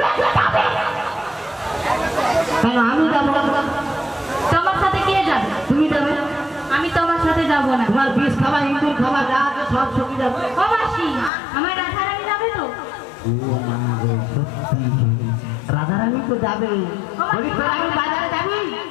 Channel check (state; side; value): drops out; right; at 11.3 s